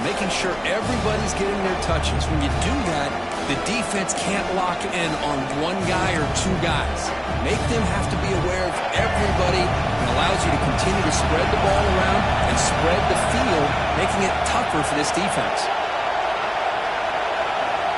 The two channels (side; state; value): both; identical; correlation 1.00